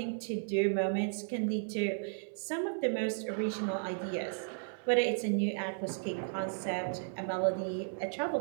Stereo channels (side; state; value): left; silent; 55 dB below the other